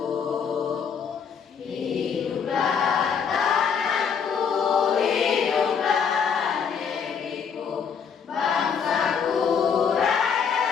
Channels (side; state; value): right; quieter; 6.7 dB